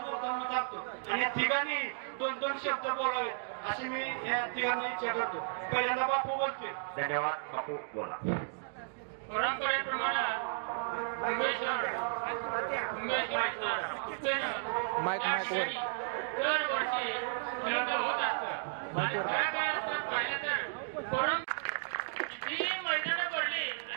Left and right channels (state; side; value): silent; left; digital silence